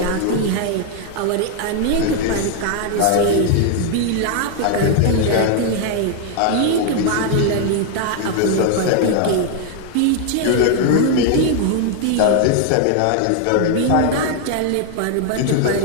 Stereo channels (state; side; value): different; both; correlation 0.00